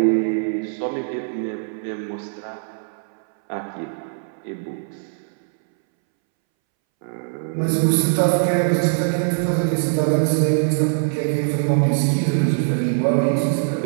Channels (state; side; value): silent; left; 63 dB below the other